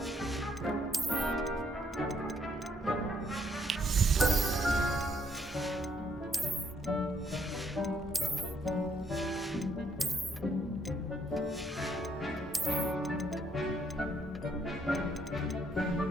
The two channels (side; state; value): both; normal; correlation 0.70